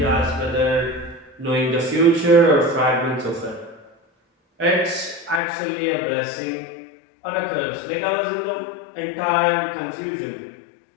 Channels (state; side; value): drops out; right; at 5.4 s